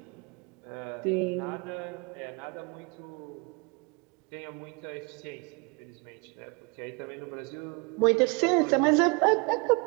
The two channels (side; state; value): left; quieter; 31.6 dB